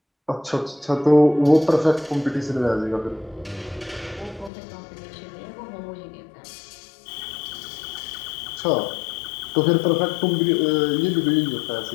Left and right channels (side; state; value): right; drops out; at 4.5 s